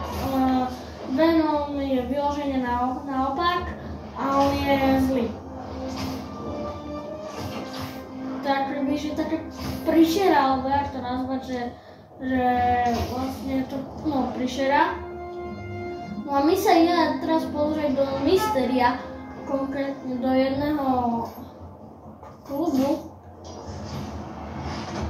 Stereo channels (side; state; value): both; identical; correlation 1.00